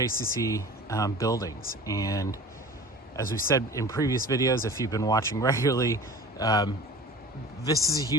buildings. And as we've said in previous videos, if you've been watching regularly, this is a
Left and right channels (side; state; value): both; normal; correlation 0.40